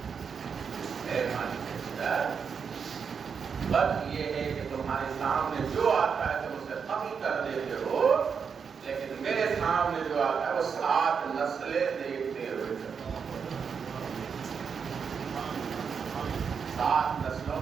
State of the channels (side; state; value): left; quieter; 6.3 dB